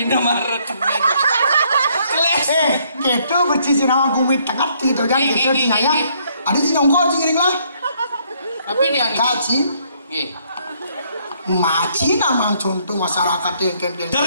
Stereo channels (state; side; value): inverted; both; correlation -0.68